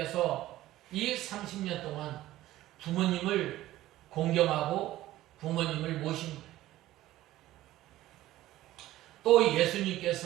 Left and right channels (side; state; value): left; quieter; 15.3 dB